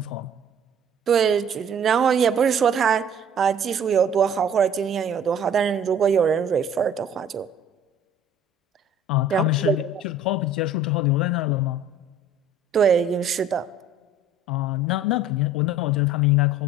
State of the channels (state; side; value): normal; both; correlation 0.50